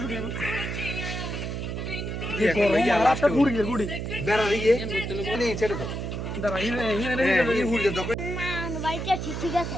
1200 গুড়ি বেড়া দিয়ে নি ছেড়ে দাও দাঁড়া এই হুড়ে দাও না আনুবাড়িটা ঠিক আছে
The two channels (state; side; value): noise; right; hum, 4 dB below the sound